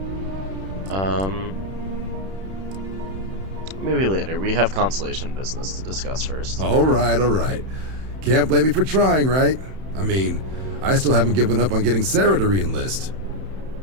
Maybe later. We have Constellation business to discuss first. All right, all right. Can't blame me for trying, right? I mean, I still haven't given up on getting Sarah to re-enlist.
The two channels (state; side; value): late; left; 31 ms